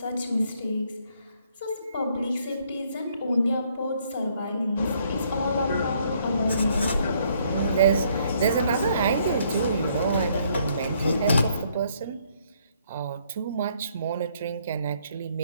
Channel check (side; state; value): both; inverted; correlation -0.68